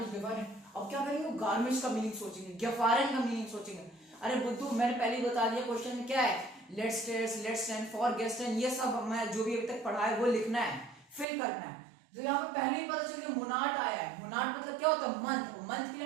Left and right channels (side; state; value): left; drops out; at 11.2 s